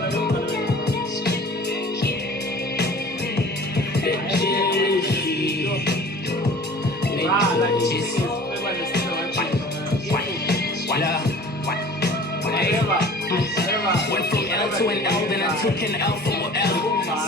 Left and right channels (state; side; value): normal; both; correlation 0.45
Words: Went from L to an L, then I took an L from L.